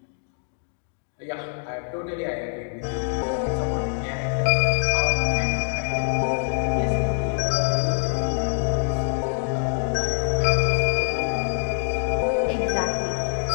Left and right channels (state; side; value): silent; right; digital silence